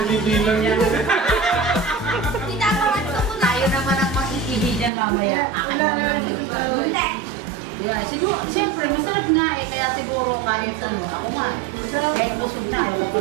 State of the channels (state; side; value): drops out; left; at 4.9 s